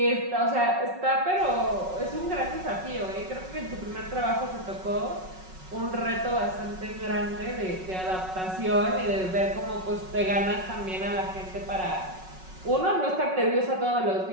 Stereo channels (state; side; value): late; left; 5.4 ms